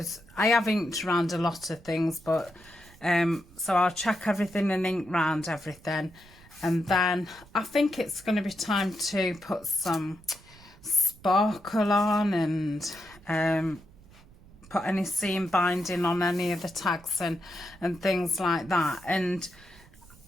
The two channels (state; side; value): noise; right; rumble, 24 dB below the sound